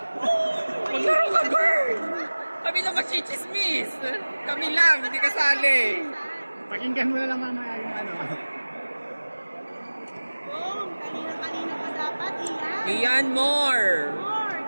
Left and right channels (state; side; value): inverted; both; correlation -1.00